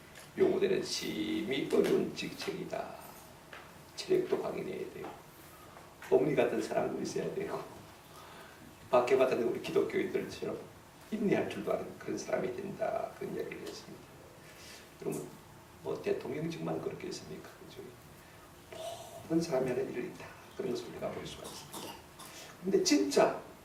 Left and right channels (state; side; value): identical; both; correlation 1.00